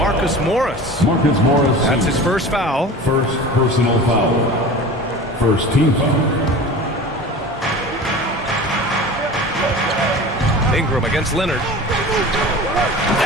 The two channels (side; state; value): both; normal; correlation 0.36